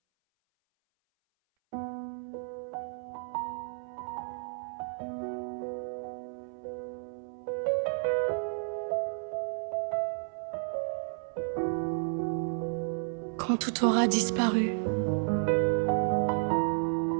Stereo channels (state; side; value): silent; left; 57 dB below the other